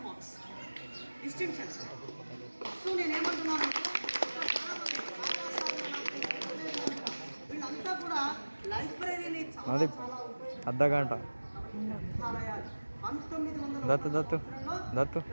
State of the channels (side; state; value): both; inverted; correlation -1.00